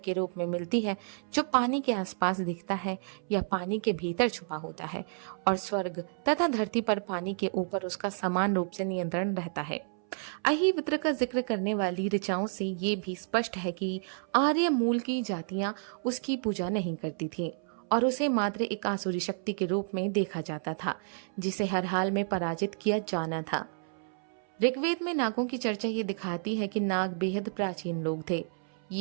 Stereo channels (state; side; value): silent; left; 57 dB below the other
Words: के रूप में मिलती है जो पानी के आसपास दिखता है या पानी के भीतर छुपा होता है और स्वर्ग तथा धरती पर पानी के ऊपर उसका समान रूप से नियंत्रण रहता है। अहिवित्र का जिक्र करने वाली ऋचाओं से ये भी स्पष्ट है कि आर्य मूल की जातियां उसकी पूजा नहीं करती थी और उसे मात्र एक आसुरी शक्ति के रूप में देखा जाता था, जिसे हर हाल में पराजित किया जाना था। ऋग्वेद में नागों की चर्चा ये दिखाती है कि नाग बेहद प्राचीन लोग थे।